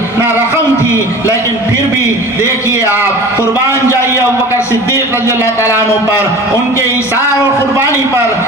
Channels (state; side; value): normal; both; correlation 0.39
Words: ना रकम थी। लेकिन फिर भी देखिए आप, कुर्बान जाइए अबू बकर सिद्दीक रजी अल्लाह ताला अन्हु पर, उनके इशार और कुर्बानी पर